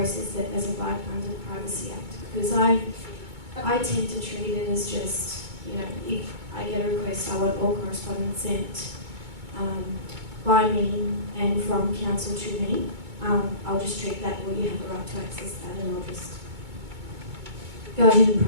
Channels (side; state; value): left; late; 2.2 ms